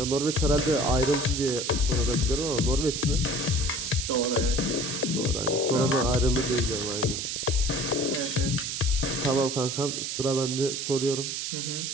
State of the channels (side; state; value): right; noise; hiss, 3 dB below the sound